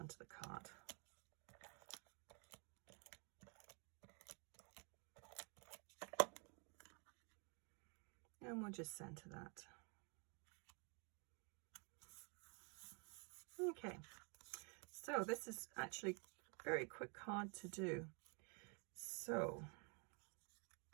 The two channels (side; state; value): left; quieter; 35.3 dB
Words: the card. And we'll just center that. Okay, so this is actually a very quick card to do. So